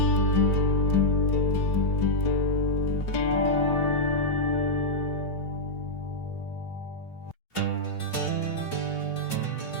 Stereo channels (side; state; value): right; late; 3.0 ms